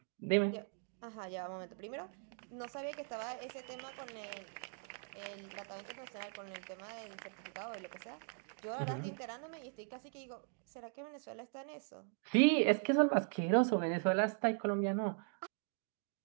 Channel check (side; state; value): left; silent; 51 dB below the other